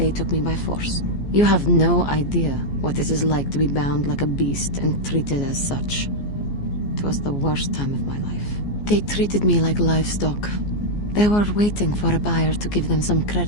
took me by force. You have no idea what it is like to be bound like a beast and treated as such. It was the worst time of my life. They treated me like livestock. They were waiting for a buyer to give them some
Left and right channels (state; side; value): late; right; 14 ms